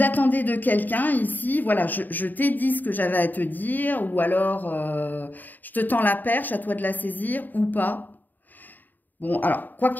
attendez de quelqu'un ici, voilà, je t'ai dit ce que j'avais à te dire, ou alors je te tends la perche, à toi de la saisir, ou pas. Bon, alors, quoi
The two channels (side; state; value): right; late; 0.087 ms